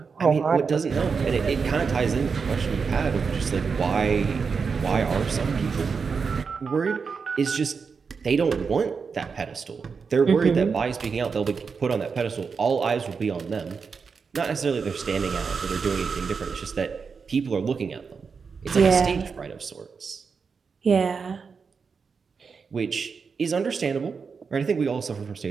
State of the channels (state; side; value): quieter; left; 5.5 dB